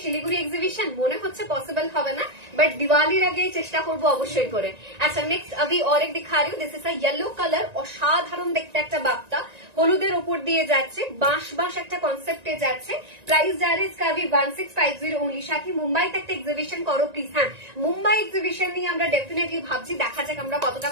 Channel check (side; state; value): left; late; 1.9 ms